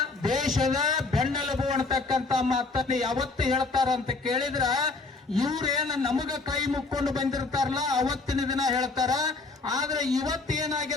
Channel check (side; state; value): right; quieter; 3.8 dB